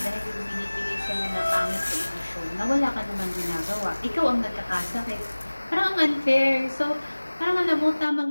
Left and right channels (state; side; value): inverted; both; correlation -1.00